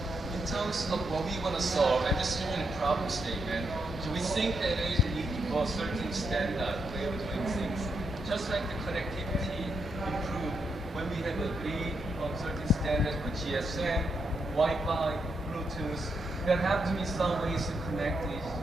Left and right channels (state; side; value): normal; both; correlation 0.81